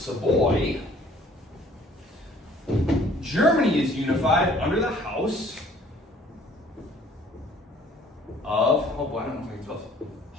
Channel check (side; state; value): both; normal; correlation 0.56